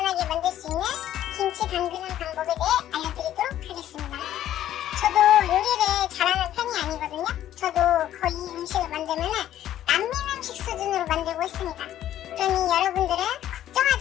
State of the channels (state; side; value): quieter; right; 12.1 dB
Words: 만들 수 있는 김치 담그는 방법에 대해 알려드리도록 하겠습니다. 저도 요리를 잘하는 편이 아니거든요. 저도 거의 음식을 만들면 남민 음식 수준으로 만들고 있습니다. 그러니 여러분들은